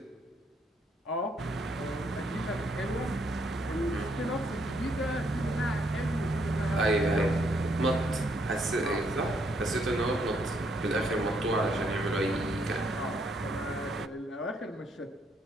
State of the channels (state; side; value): normal; both; correlation 0.72